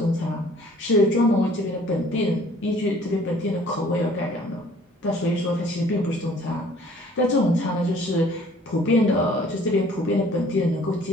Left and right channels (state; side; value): normal; both; correlation 0.54